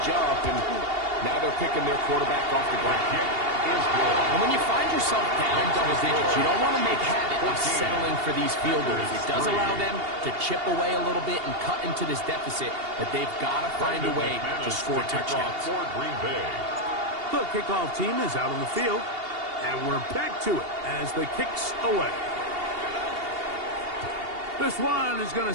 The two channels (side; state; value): left; late; 2.8 ms